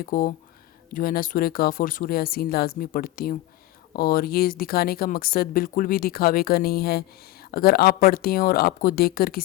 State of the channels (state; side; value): quieter; right; 16.2 dB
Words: کو جو ہے نا سورہ کہف اور سورہ یاسین لازمی پڑھتی ہوں، اور یہ دکھانے کا مقصد بالکل بھی دکھاوے کا نہیں ہے۔ اگر آپ پڑھتے ہیں اور آپ کو دیکھ کر